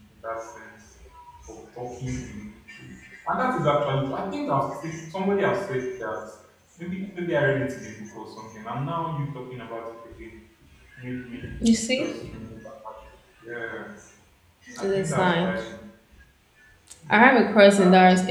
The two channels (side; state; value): both; identical; correlation 1.00